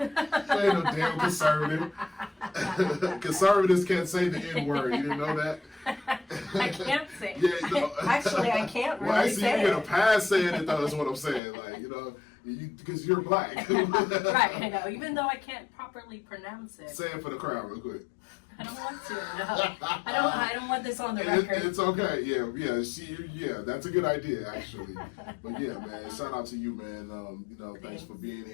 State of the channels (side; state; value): right; drops out; at 11.4 s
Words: ain't no damn conservative. Conservatives can't say the N-word. You didn't know that? I can't say it. Yeah, no. Actually, I can't really actually, say you it. get a pass saying it, though, is what I'm saying. Like, you know, because you're black. Right, I know. Even though I can't properly pronounce it. Say it for the crowd real quick. I don't want to. No, I don't want this on the record. It's okay. Yeah. That's a good idea, actually. But yeah, man. Shout out to you, man. You know, thanks for being